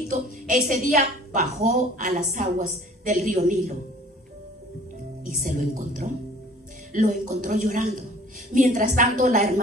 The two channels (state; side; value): normal; both; correlation 0.51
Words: ese día bajó a las aguas del río Nilo y se lo encontró llorando. Mientras tanto la